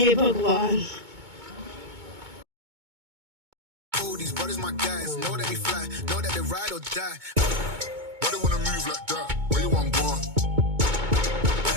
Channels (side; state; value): left; late; 2.2 ms